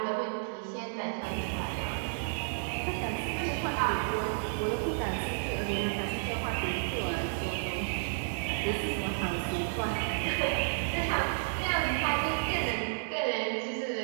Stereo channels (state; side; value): silent; left; digital silence